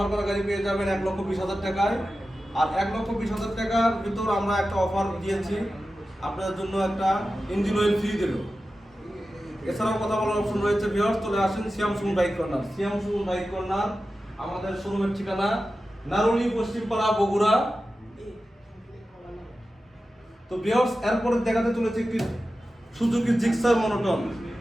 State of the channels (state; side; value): normal; both; correlation 0.93